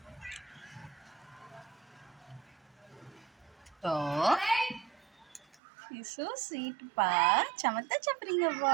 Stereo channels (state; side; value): drops out; left; at 5.6 s